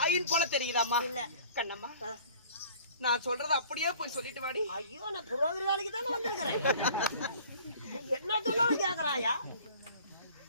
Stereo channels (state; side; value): inverted; both; correlation -0.49